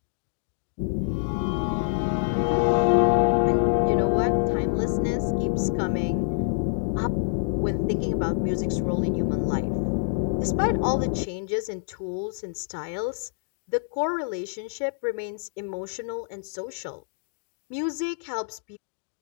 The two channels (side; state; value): right; silent; digital silence